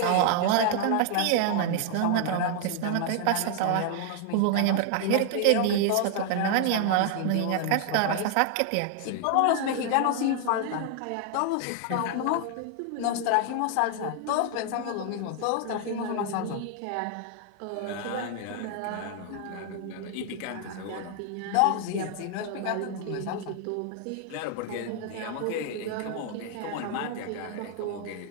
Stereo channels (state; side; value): different; both; correlation 0.00